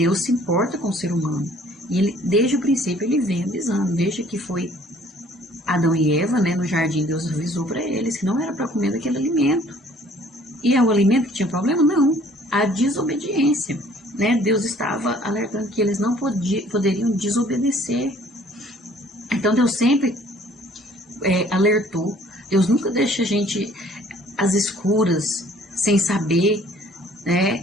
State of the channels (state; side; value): normal; both; correlation 0.56